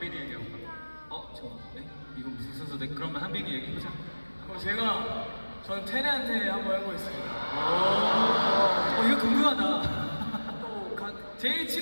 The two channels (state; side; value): inverted; both; correlation -1.00